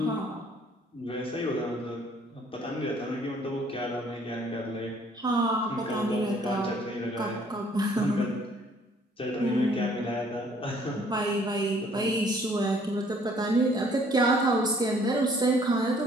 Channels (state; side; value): normal; both; correlation 0.60